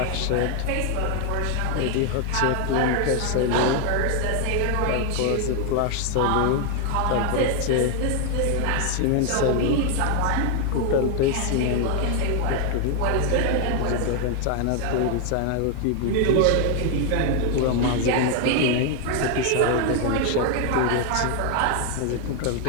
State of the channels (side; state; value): both; different; correlation 0.00